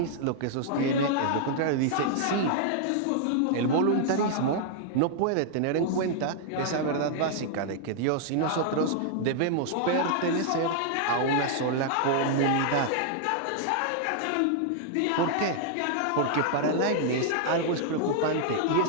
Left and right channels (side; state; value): both; different; correlation -0.01